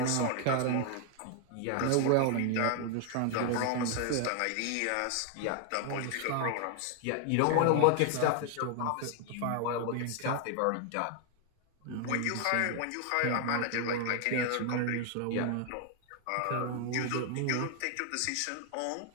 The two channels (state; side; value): different; both; correlation 0.00